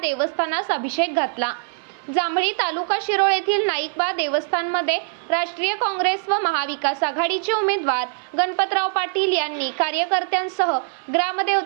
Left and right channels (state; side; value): silent; left; 58 dB below the other